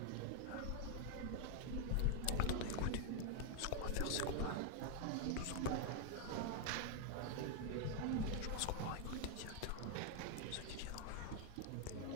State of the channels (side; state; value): both; different; correlation 0.00